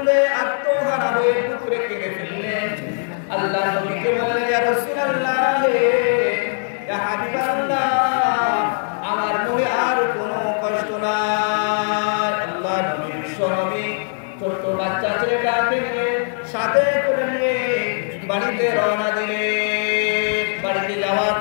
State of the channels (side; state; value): right; silent; digital silence